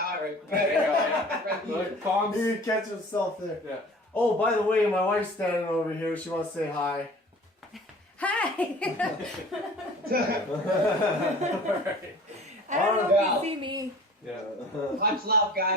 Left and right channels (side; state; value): both; normal; correlation 0.45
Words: He would catch himself there. Yeah. Oh, by the way, my wife's standing over here. She wants to say hi. Hi! Right. I don't know if you see me. Yeah. Much love,